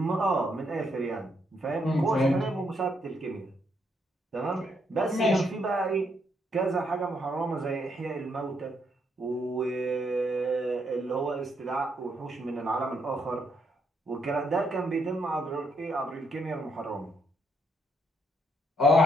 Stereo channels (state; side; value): normal; both; correlation 0.74